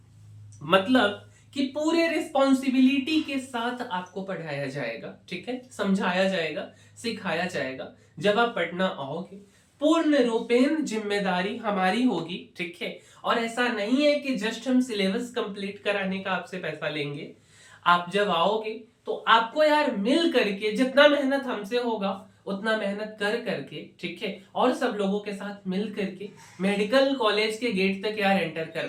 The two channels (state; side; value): identical; both; correlation 1.00